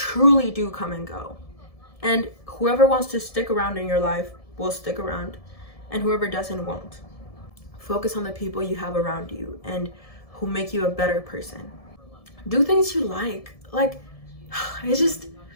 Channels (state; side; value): late; right; 1.7 ms